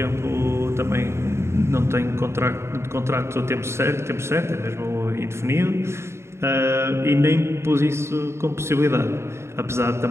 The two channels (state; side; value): late; left; 0.13 ms